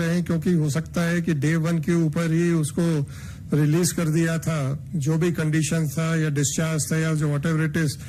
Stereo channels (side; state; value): both; identical; correlation 1.00